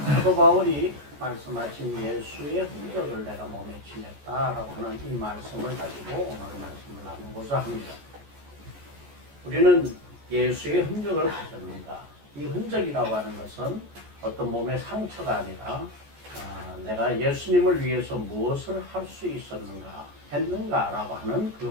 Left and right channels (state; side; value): late; left; 14 ms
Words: 사도 바울이 말씀하신 예수의 흔적을 내가 몸에 지녔다라고 하는 이 말씀을 가지고 오늘 말씀을 나누고자 합니다. 우리는 예수의 흔적을 가졌는가? 이 흔적이라고 하는 것은 어떤 몸의 상처가 아니라 내가 예수님을 위해서 무엇을 할 수 있었는가, 했는가라고 하는 그